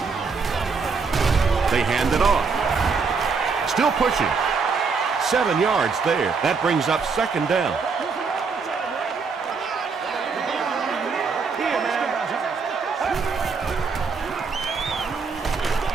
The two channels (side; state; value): left; quieter; 5.0 dB